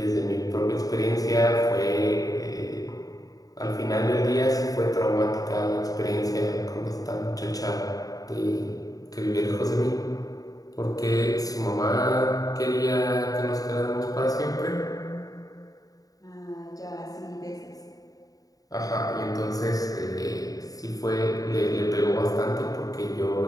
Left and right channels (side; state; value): right; late; 0.18 ms